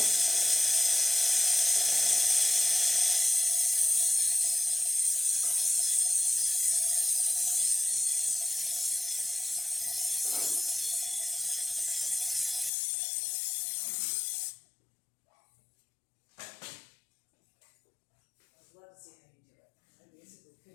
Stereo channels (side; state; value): right; drops out; at 12.7 s